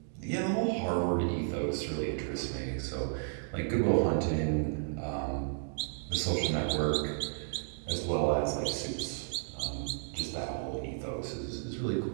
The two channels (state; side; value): silent; left; digital silence